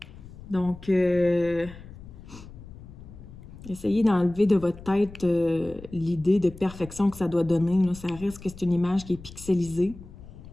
Donc, essayez d'enlever de votre tête l'idée de perfection que ça doit donner. Là. Ça reste que c'est une image qui est pixelisée.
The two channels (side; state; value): left; noise; rumble, 17 dB below the sound